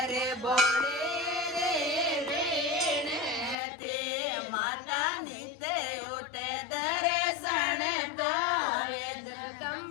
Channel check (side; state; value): right; drops out; at 3.6 s